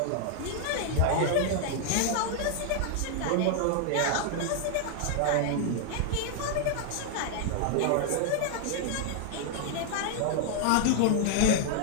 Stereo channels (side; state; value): both; different; correlation 0.00